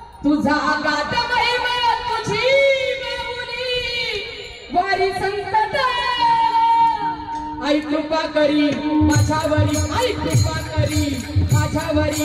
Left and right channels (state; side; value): identical; both; correlation 1.00